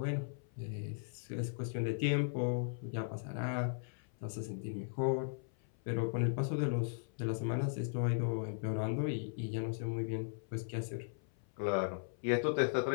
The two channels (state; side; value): silent; right; 53 dB below the other